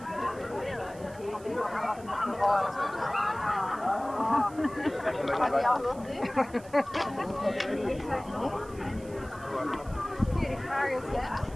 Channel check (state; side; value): noise; right; hiss, 23 dB below the sound